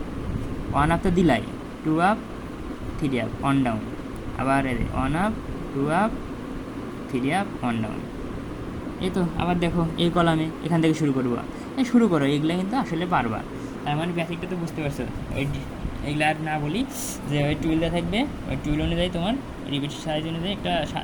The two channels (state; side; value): identical; both; correlation 1.00